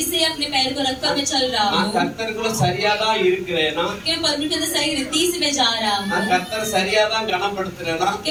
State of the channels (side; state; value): both; identical; correlation 1.00